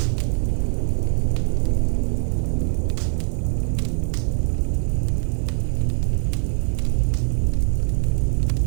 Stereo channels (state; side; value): silent; left; digital silence